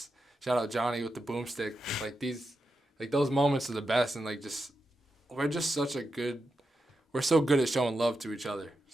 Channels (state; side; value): normal; both; correlation 0.88